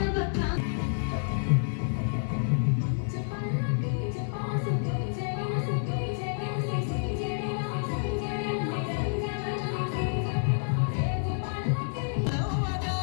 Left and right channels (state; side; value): silent; right; digital silence